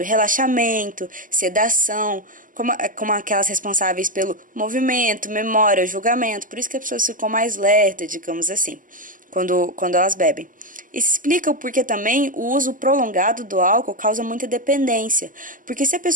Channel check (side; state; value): left; late; 0.39 ms